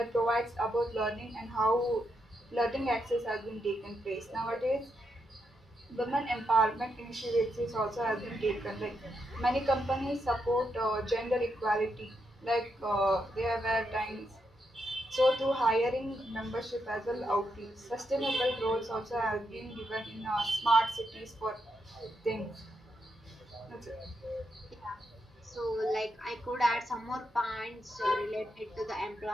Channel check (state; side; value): normal; both; correlation 0.82